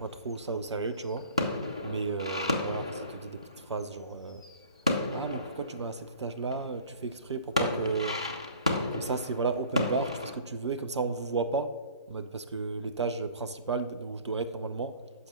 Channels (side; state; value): both; inverted; correlation -0.48